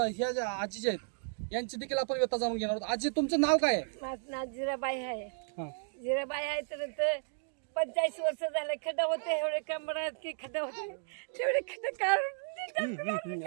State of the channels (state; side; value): silent; left; digital silence